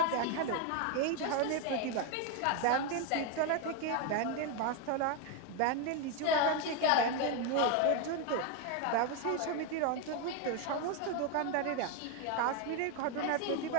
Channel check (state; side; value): different; both; correlation 0.01